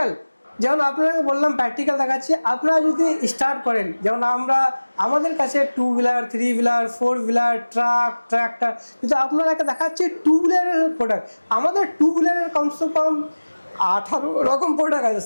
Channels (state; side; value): inverted; both; correlation -1.00